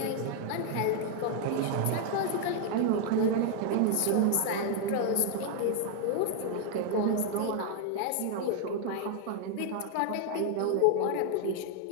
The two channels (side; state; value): both; different; correlation 0.00